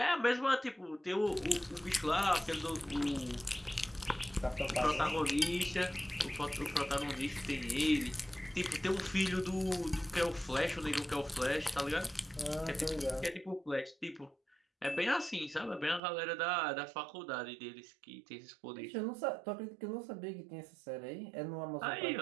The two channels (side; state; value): left; drops out; at 16.0 s